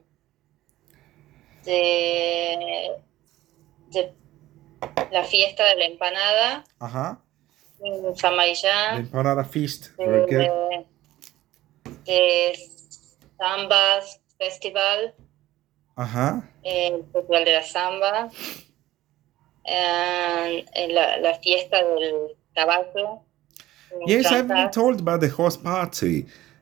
la fiesta de la empanada en San The Marillán. Empanada Feast. Very good. The Zambas Festival. El Festival de la Zamba. la fiesta del caballo. en Yes, I've been Trancas. told about the horse party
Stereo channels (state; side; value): quieter; left; 15.6 dB